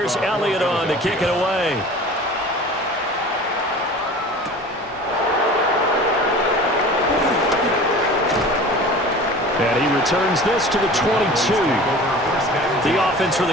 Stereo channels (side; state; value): both; normal; correlation 0.40